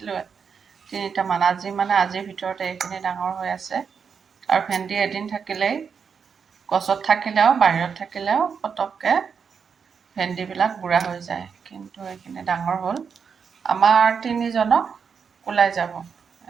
3টামান। আজিৰ ভিতৰতে এইখিনি ডাঙৰ হৈ আছে। আৰু ভেন্দি এদিন থাকিলেই, গছত থাকিলেও বাহিৰত থাকিলেও পটককৈ ভেন্দিবিলাক বুঢ়া হৈ যায়। কিন্তু এইখিনি ডাঙৰ হ'ল। আমাৰ 3জনক ওলাই যাব।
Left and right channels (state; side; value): quieter; left; 6.3 dB